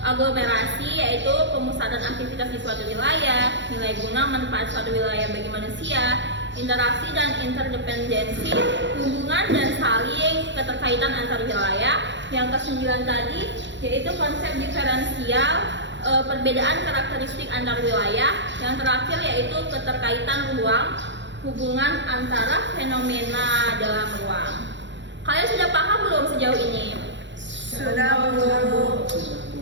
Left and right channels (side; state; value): left; late; 0.53 ms